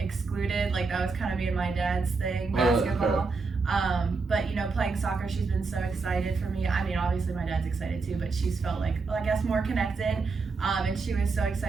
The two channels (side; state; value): left; quieter; 4.4 dB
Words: That was kind of me and my dad's thing, basketball. But playing soccer, she's been so excited for me. I mean, obviously my dad's excited too, but she's felt I guess more connected. And she was so